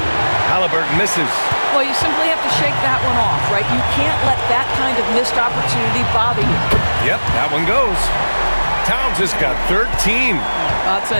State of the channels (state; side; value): inverted; both; correlation -1.00